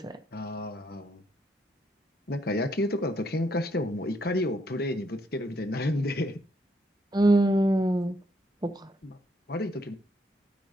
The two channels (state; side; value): normal; both; correlation 0.73